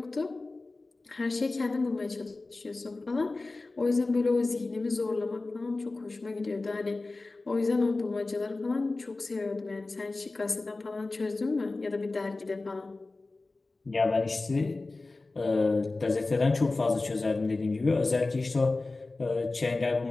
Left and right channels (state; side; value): quieter; right; 3.4 dB